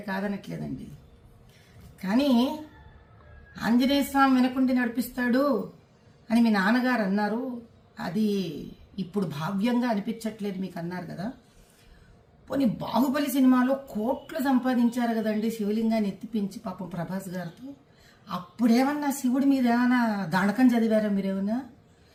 కాదనట్లేదండి. కానీ ఆంజనేయ స్వామి వెనకుండి నడిపిస్తాడు అని మీ నాన్నగారు అన్నారు. అది ఇప్పుడు భావ్యంగా అనిపించట్లేదు మీకు అన్నారు కదా. పోనీ బాహుబలి సినిమాలో కోట్లు సంపాదించారు కదండి శివలింగాన్ని ఎత్తిపించి పాపం ప్రభాస్ గారితో. అప్పుడేమన్నా శివుడి మీద ఏమైనా దానకం చదివారా మీరేమన్నా?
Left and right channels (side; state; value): both; identical; correlation 1.00